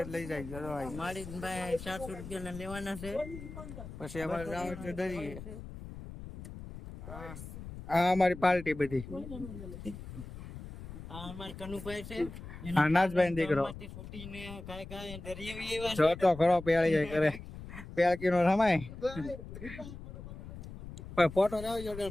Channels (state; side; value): noise; left; rumble, 12 dB below the sound